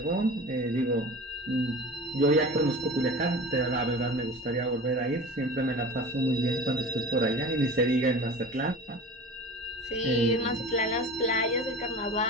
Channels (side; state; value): both; normal; correlation 0.37